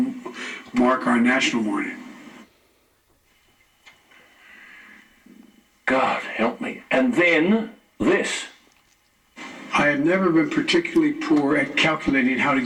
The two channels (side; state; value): both; identical; correlation 1.00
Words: mark our national mourning. God help me. And then this. I have never been particularly poor at calculating how to